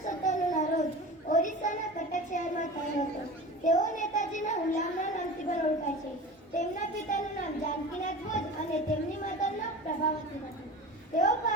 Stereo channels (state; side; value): normal; both; correlation 0.35